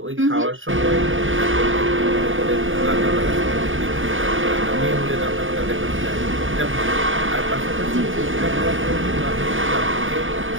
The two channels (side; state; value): left; late; 0.58 ms